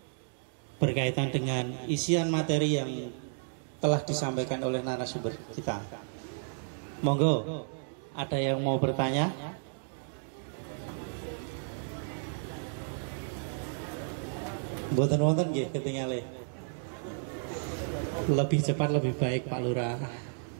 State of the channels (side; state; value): left; silent; digital silence